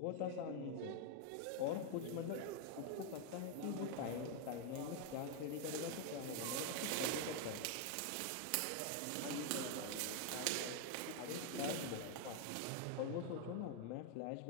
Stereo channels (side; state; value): both; different; correlation 0.00